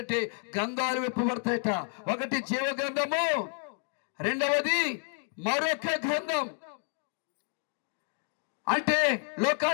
గ్రంథాలు విప్పబడతాయట. ఒకటి జీవ గ్రంథము, రెండవది మరొక గ్రంథం. అంటే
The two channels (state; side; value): silent; right; 58 dB below the other